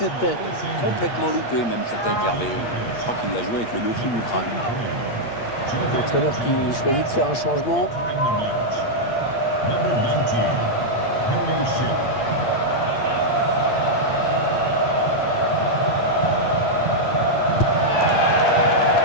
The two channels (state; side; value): late; right; 8.6 ms